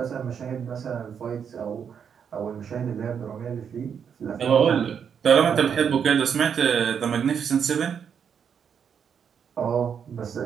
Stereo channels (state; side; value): quieter; left; 7.4 dB